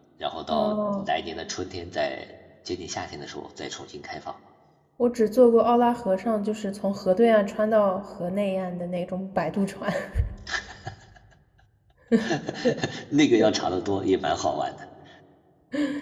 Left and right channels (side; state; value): both; identical; correlation 1.00